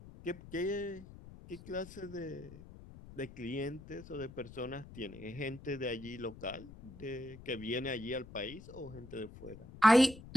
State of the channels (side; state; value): left; noise; rumble, 17 dB below the sound